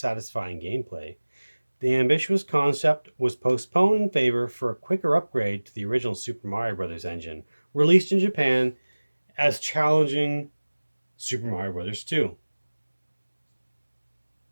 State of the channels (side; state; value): both; inverted; correlation -1.00